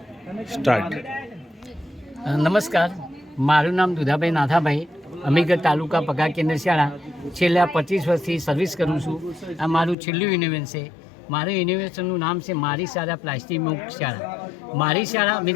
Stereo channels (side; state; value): right; drops out; at 10.0 s